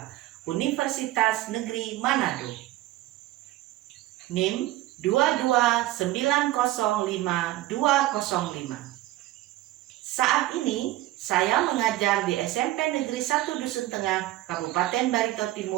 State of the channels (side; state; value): left; quieter; 16.0 dB